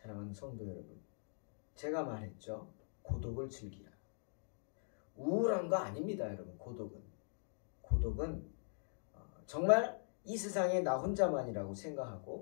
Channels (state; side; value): silent; right; digital silence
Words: 성도 여러분, 제가 말했죠. 고독을 즐기라. 우울한 거 아닙니다, 여러분. 고독은 정말 이 세상에 나 혼자만이라고